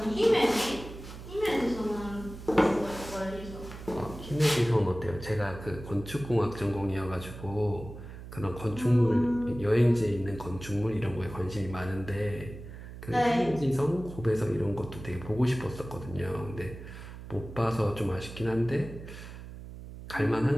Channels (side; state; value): right; noise; hum, 13 dB below the sound